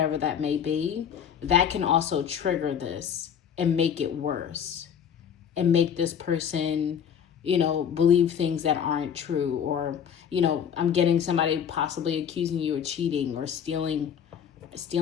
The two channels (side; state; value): right; quieter; 8.1 dB